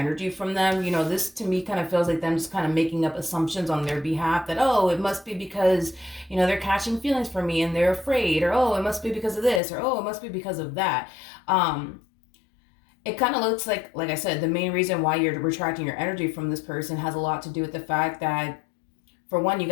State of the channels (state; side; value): drops out; right; at 9.6 s